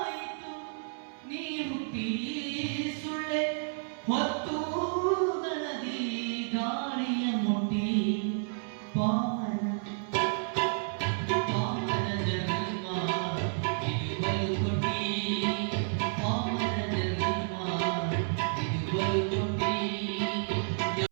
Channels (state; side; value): silent; left; 57 dB below the other